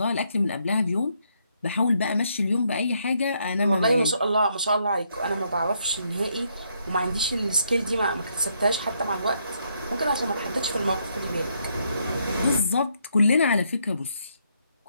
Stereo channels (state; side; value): inverted; both; correlation -0.74